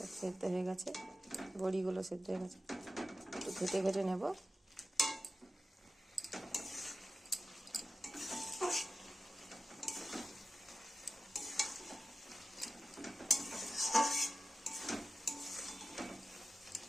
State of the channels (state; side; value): normal; both; correlation 0.94